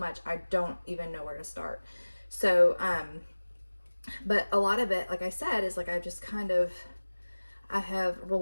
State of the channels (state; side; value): inverted; both; correlation -1.00